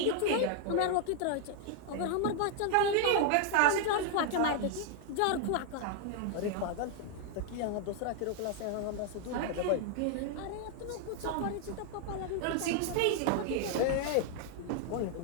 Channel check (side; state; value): both; different; correlation 0.00